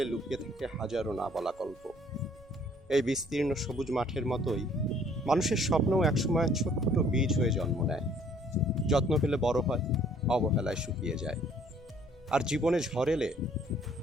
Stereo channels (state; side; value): normal; both; correlation 0.59